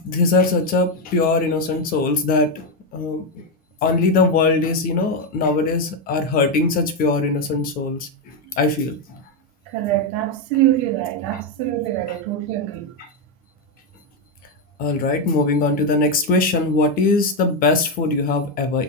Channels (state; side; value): normal; both; correlation 0.06